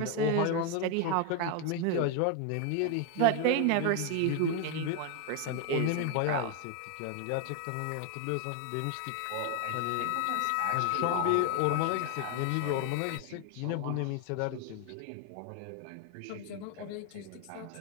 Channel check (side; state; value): both; different; correlation 0.01